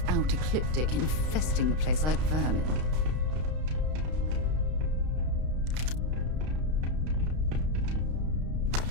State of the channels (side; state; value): left; late; 32 ms